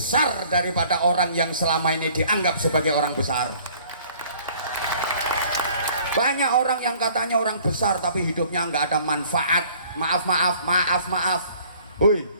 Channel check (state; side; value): inverted; both; correlation -0.55